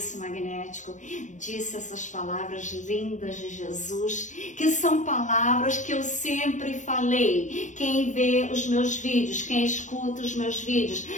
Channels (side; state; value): right; late; 0.36 ms